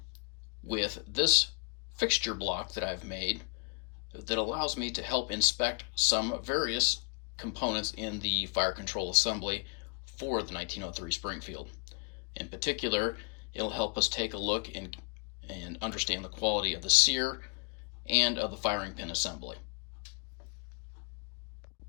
with this fixture block that I've made that allows me to help inspect some various components in the fire control assembly for the 1903 Springfield. In particular, it'll help us take a look and understand the quality of the Sear and of the firing pin assembly.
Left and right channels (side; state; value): right; quieter; 34.8 dB